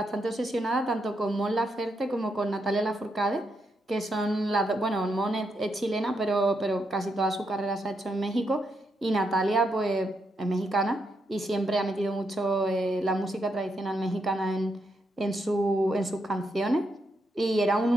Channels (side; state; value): both; normal; correlation 0.80